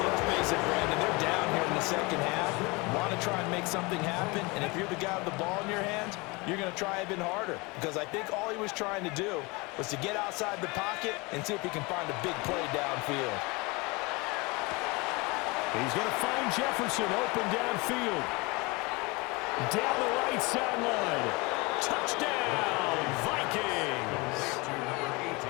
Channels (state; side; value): quieter; right; 26.1 dB